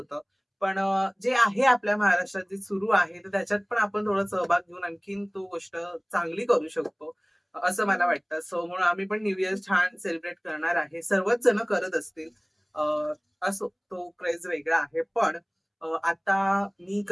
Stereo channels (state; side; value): identical; both; correlation 1.00